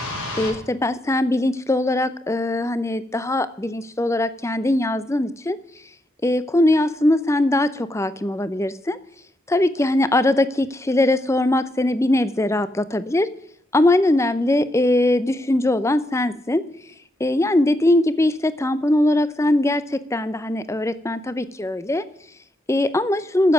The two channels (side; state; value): both; normal; correlation 0.80